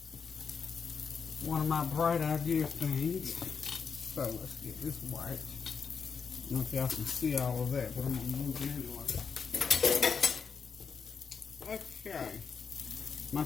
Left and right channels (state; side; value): quieter; right; 6.0 dB